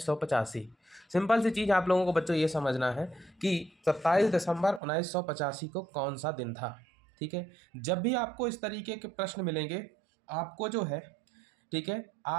Simple सी चीज़ आप लोगों को बच्चों ये समझना है कि 27 दिसंबर 1985 को कौन सा दिन था। ठीक है, जब भी आपको इस तरीके के प्रश्न मिलेंगे, आपको जो है, ठीक है,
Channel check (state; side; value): drops out; left; at 4.8 s